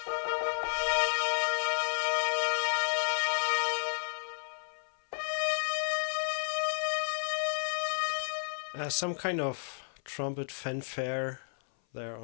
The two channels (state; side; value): silent; right; 56 dB below the other